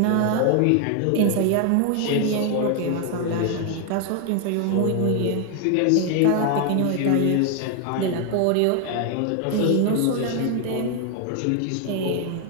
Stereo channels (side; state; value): both; different; correlation 0.00